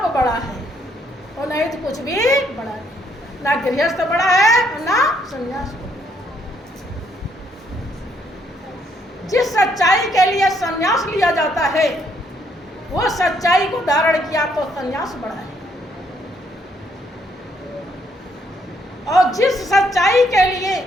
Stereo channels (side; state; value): both; normal; correlation 0.70